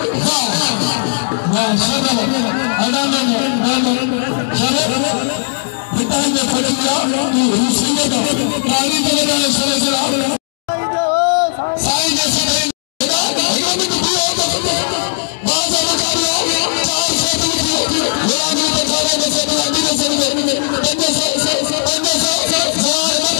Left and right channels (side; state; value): right; silent; digital silence